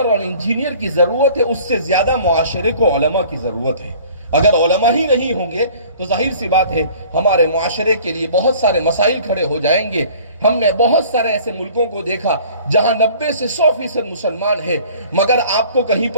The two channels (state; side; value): inverted; both; correlation -0.49